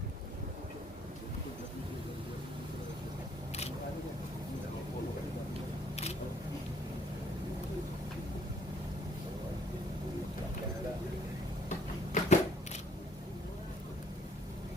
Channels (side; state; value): both; normal; correlation 0.64